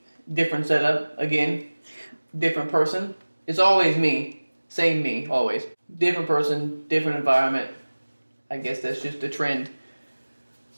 different setup again, different person. It's always me, same me, always. Different person, different environment. I guess that's just the trend.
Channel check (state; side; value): inverted; both; correlation -1.00